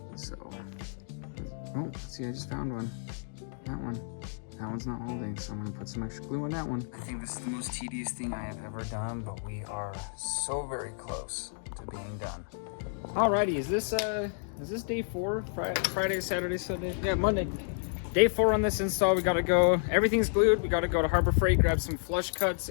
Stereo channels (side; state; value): right; silent; digital silence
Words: So, oh, see, I just found one. That one's not holding, so I'm gonna put some extra glue on that one. I think this is the most tedious thing I have ever done, but we are so very close to being done. Alrighty, is this day 4? Friday, Saturday, Sunday? Yeah, Monday. Day 4 on this install. We gotta go, everything's glued. We gotta go to Harbor Freight, grab some flush cuts